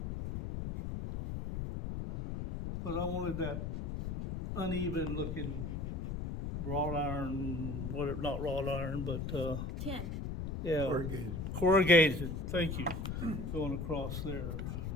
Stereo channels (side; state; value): left; noise; rumble, 4 dB below the sound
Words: But I wanted that uneven looking wrought iron, whatever, not wrought iron, but, Tin. yeah. Corrugated, thank you, going across there.